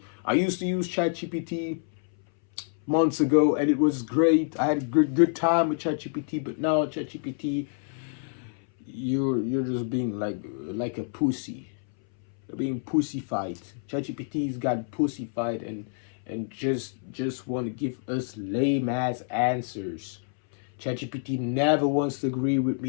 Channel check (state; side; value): silent; right; 60 dB below the other